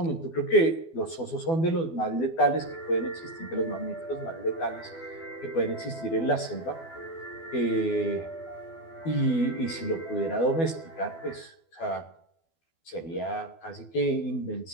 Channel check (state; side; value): late; right; 12 ms